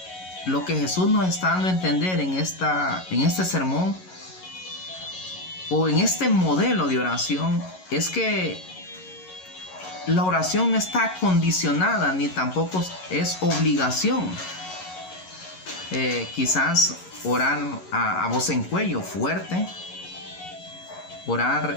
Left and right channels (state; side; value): late; right; 11 ms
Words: lo que Jesús nos está dando a entender en este sermón o en este modelo de oración es que la oración no está condicionada ni tampoco es obligación. Quizás orar a voz en cuello fuerte, orar